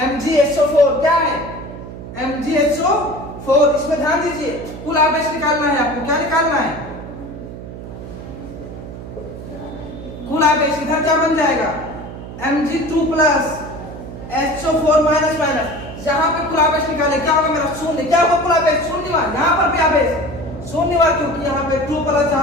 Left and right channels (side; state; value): right; noise; hum, 12 dB below the sound